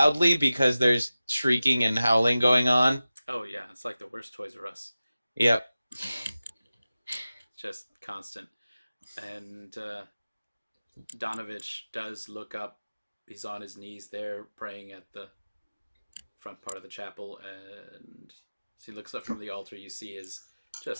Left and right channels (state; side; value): inverted; both; correlation -0.95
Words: because there's shrieking and howling going on. Oh yeah, it's like the worst Toys R Us. Yep. Just constant. And Donovich does look up. He's on his knees there, praying at the front part of the chapel, and as he looks up from the altar, you see his